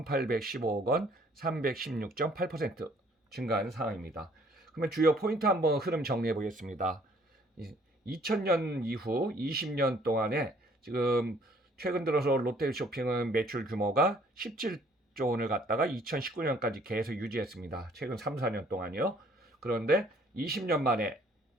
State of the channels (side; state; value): both; normal; correlation 0.60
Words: 원, 316.8% 증가한 상황입니다. 그러면 주요 포인트 한번 흐름 정리해 보겠습니다. 2000년 이후 20년 동안에 지금 최근 들어서 롯데쇼핑은 매출 규모가 17조 원을 갖다가 2019년까지 계속 유지했습니다. 최근 3, 4년 동안이요. 그런데 20년 만에